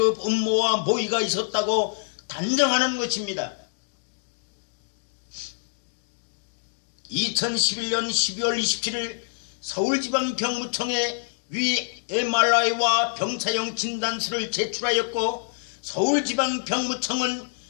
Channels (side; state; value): right; silent; digital silence